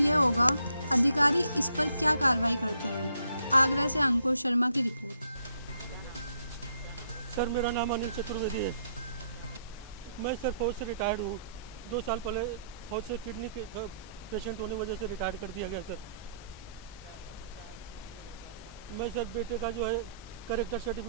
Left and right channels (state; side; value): inverted; both; correlation -0.71